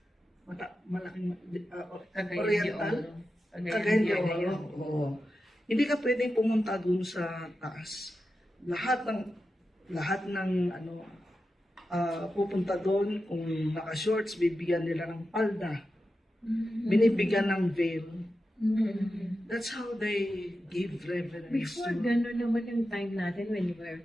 malaking Oriental? Cagayan de Oro. Oo. Hindi ka pwedeng pumunta doon sa taas. Lahat ng pupunta doon, kung naka-shorts, bibigyan nila ng palda. Binibigyan ng veil. That's how they give reverence. Before, gano'n naman yung time natin when we were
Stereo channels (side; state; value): both; normal; correlation 0.91